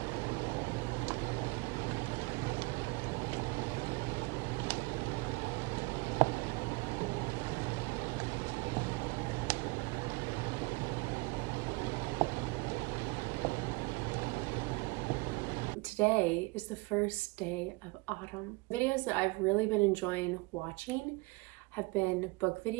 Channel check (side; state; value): left; quieter; 26.0 dB